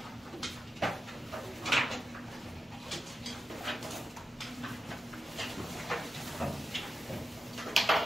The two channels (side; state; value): both; normal; correlation 0.91